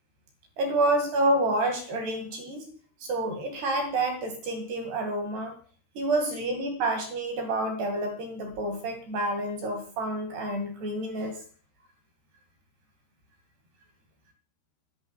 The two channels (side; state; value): left; late; 13 ms